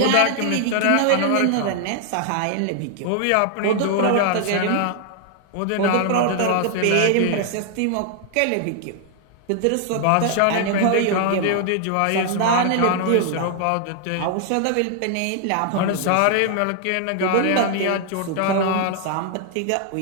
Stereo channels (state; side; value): different; both; correlation 0.00